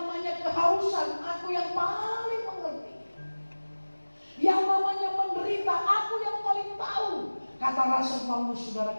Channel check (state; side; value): inverted; both; correlation -1.00